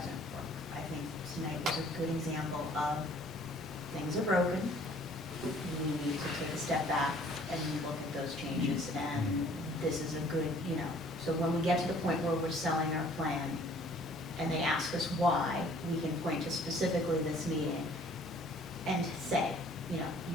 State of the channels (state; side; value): normal; both; correlation 0.56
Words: work. I think tonight was a good example of things are broken. We need to take a step back and look at those changes, and this is a good, so when we get to the point where we're selling our plan and they ask us why, we can point to specifically this meeting and say,